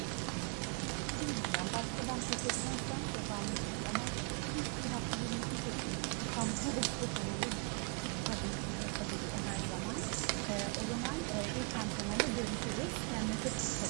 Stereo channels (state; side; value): quieter; left; 34.5 dB